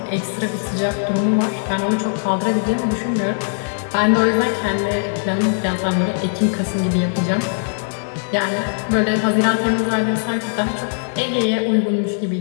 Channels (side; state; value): right; silent; digital silence